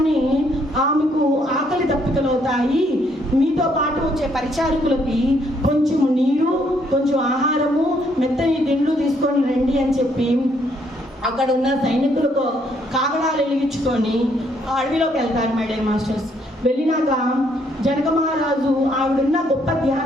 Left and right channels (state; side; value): normal; both; correlation 0.70